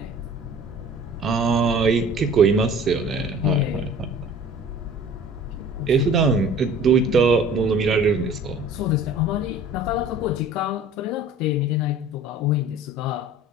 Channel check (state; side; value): normal; both; correlation 0.46